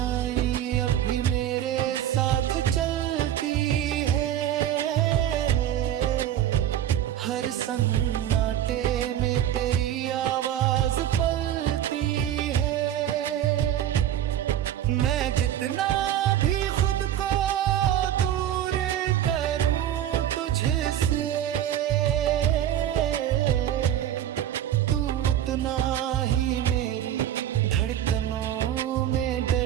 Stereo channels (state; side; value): quieter; left; 11.3 dB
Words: अब भी मेरे साथ चलती है, हर सन्नाटे में तेरी आवाज पलती है। मैं जितना भी खुद को दूर करूं तुझसे, तू उतना ही मेरी धड़कनों में